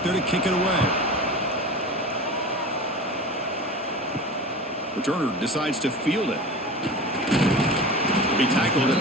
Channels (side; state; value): both; normal; correlation 0.33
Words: there to kick it away. Returner decides to field it. He tackled